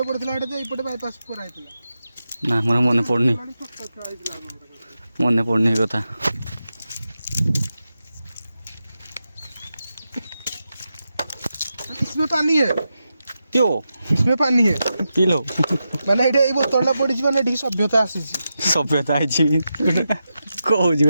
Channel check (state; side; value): inverted; both; correlation -0.89